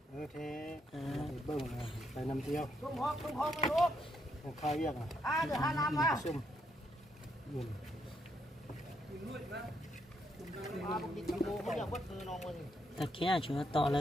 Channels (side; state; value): both; normal; correlation 0.76